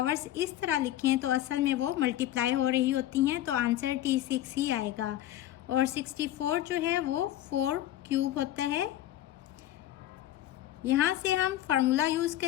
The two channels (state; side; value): quieter; right; 13.2 dB